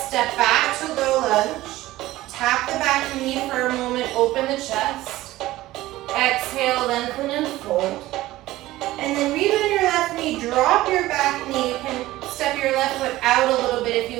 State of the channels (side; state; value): left; quieter; 16.8 dB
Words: back to low lunge. Tap the back knee for a moment. Open the chest. Exhale, lengthen and fold. And then rebend your left knee. Drop your back knee. You can step your left foot out a little bit if